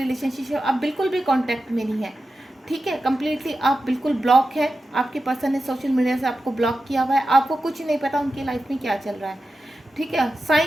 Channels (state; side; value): normal; both; correlation 0.92